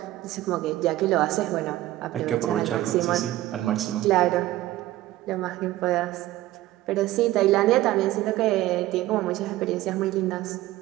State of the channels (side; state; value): left; quieter; 15.8 dB